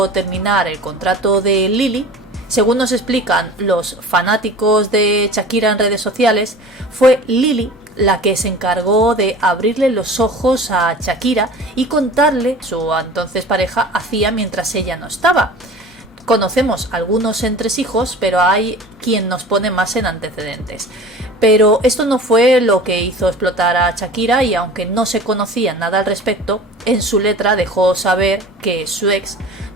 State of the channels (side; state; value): both; normal; correlation 0.40